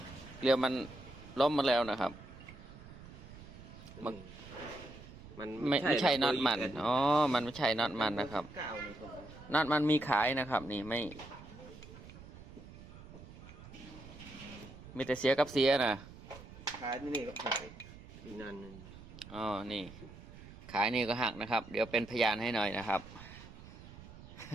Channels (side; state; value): right; noise; rumble, 17 dB below the sound